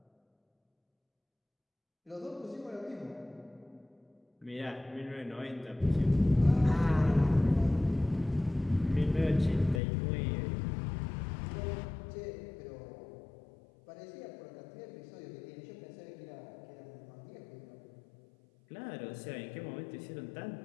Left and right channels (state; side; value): drops out; right; at 9.8 s